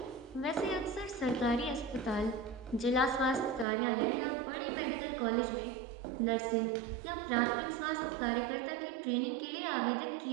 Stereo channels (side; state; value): left; drops out; at 3.7 s